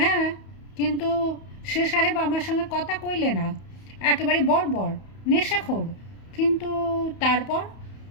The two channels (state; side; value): late; right; 31 ms